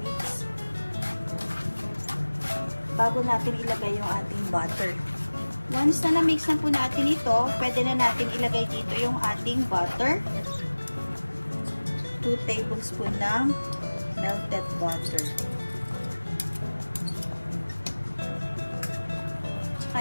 bago natin ilagay yung ating butter. Once na na-mix na po natin ito, pwede na natin ilagay dito yung ating butter. 2 tablespoon ng melted butter.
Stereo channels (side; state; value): both; inverted; correlation -1.00